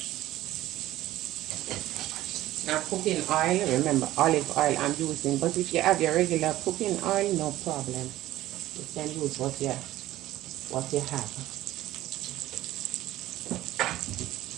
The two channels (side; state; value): left; quieter; 15.3 dB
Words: Now cooking oil, remember olive oil I'm using, but if you have your regular cooking oil, no problem. You can use what you have.